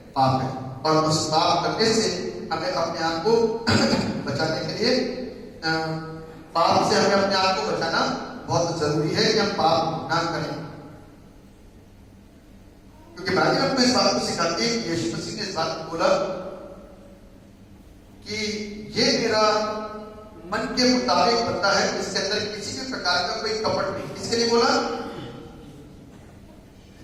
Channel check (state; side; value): identical; both; correlation 1.00